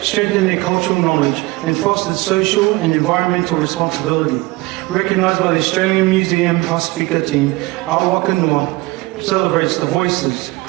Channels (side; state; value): left; quieter; 21.9 dB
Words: their cultural knowledge and fostered social and environmental responsibility. Recognised by the Australian Museum Pasifika team, Awaka Noa celebrates the voices,